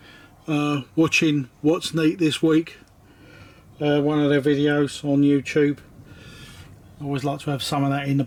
watching What's Neat this week, one of their videos on YouTube. I always like to have some of that in the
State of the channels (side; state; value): both; identical; correlation 1.00